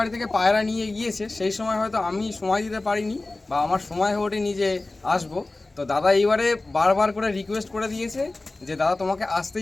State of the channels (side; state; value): right; quieter; 3.1 dB